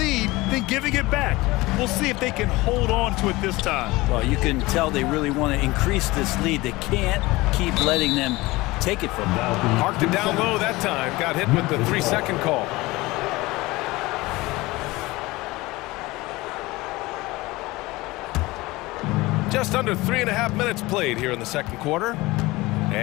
then giving it back. We'll see if they can hold on to it this time. Well, you can tell they really want to increase this lead. They can't keep letting them take it from them. Parked it down low that time. Got hit with the 3-second call. Just under 3.5 minutes played here in the second quarter.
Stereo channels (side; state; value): right; quieter; 20.8 dB